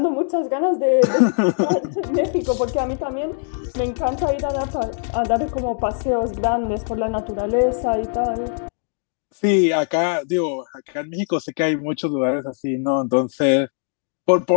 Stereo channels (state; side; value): silent; right; digital silence